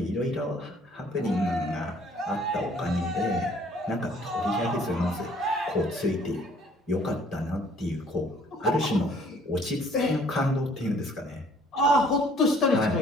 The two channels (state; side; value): normal; both; correlation 0.58